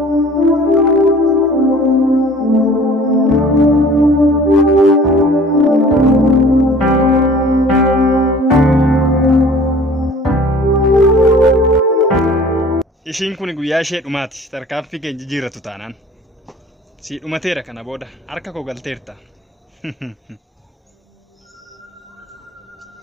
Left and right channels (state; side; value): normal; both; correlation 0.48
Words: Ishiin kun guyyaa ishee dhumaati. Tarkaanfii keenya jijjiirratu taanaan. Si dhumateera kana booda harka koo galteerta.